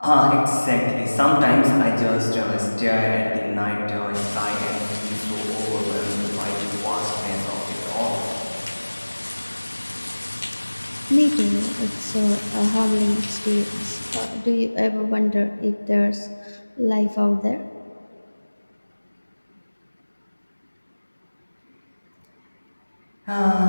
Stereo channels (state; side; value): inverted; both; correlation -1.00